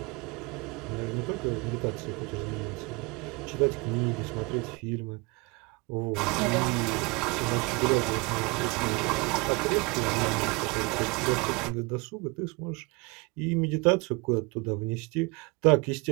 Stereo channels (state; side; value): quieter; left; 27.4 dB